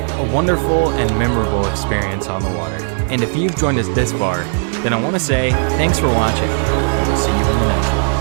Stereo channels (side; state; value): left; silent; 66 dB below the other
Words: A wonderful and memorable experience on the water. And if you've joined us this far, then I want to say thanks for watching, and we'll see you in the next one.